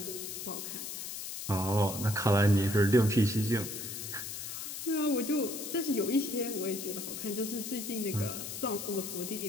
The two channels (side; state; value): left; noise; hiss, 7 dB below the sound